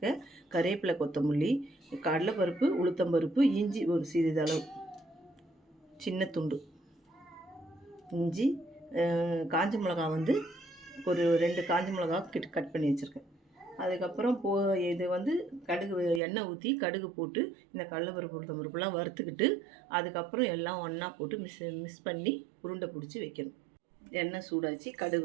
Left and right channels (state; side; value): drops out; left; at 16.2 s